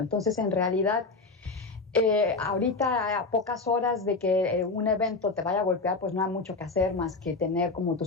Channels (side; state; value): right; quieter; 3.8 dB